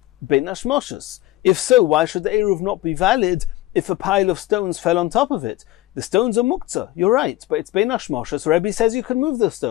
bein hashmoshes. If so, why should the Eruv not be valid if a pile of stones fell on top of it? The stones are muktzah, you're right, but it's bein hashmoshes. Rebbe says you can move the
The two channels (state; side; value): quieter; right; 16.4 dB